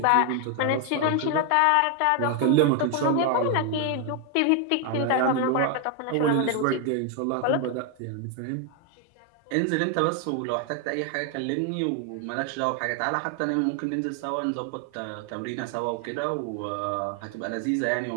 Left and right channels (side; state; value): both; different; correlation 0.01